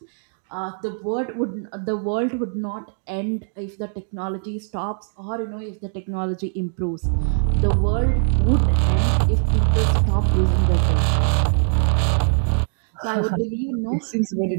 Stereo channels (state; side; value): silent; left; digital silence